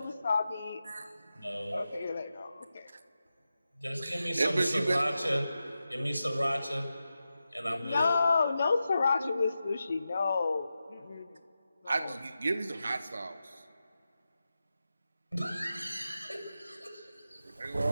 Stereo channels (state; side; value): inverted; both; correlation -0.91